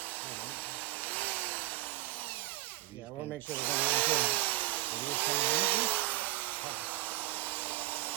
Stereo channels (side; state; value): left; quieter; 17.9 dB